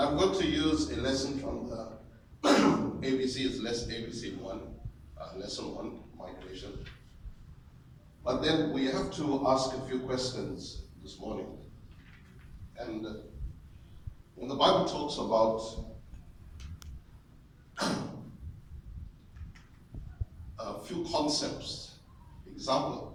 going to use a lesson from the ABC, it's ABC 1, lesson 1, migration. But then we have to ask a few questions this morning. And when the Bible talks about a few concepts,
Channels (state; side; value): identical; both; correlation 1.00